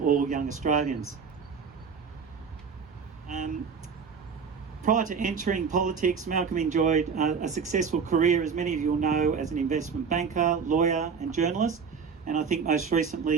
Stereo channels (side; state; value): left; quieter; 5.9 dB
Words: all young Australians. Prior to entering politics, Malcolm enjoyed a successful career, as many of you will know, as an investment banker, lawyer and journalist, and I think most